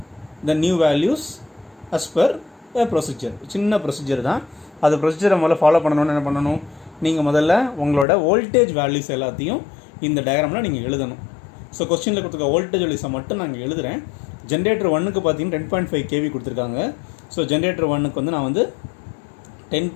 the new values as per a procedure. சின்ன ப்ரொசீஜர் தான், அது ப்ரொசீஜரை முதல்ல ஃபாலோ பண்ணணும்னு என்ன பண்ணணும், நீங்கள் முதல்ல உங்களோட வோல்டேஜ் வேல்யூஸ் எல்லாத்தையும் இந்த டயக்ராமில் நீங்கள் எழுதணும். ஸோ கொஸ்டினில் கொடுத்துருக்க வோல்டேஜ் வேல்யூஸை மட்டும் நான் எழுதுகிறேன். ஜென்ரேட்டர் 1க்கு பார்த்தீங்கன்னா 10.5 kV கொடுத்துருக்காங்க. ஸோ ஜென்ரேட்டர் 1க்கு வந்து நான் வந்து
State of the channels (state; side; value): drops out; right; at 8.1 s